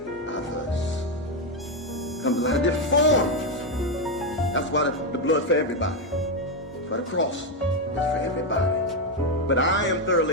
others? Comes in a lot of different forms. That's why the blood's for everybody. That's why the cross is for everybody. But I am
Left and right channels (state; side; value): normal; both; correlation 0.06